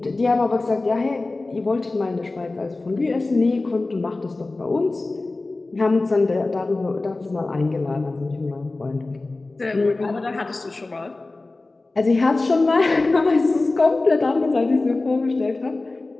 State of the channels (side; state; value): right; quieter; 3.2 dB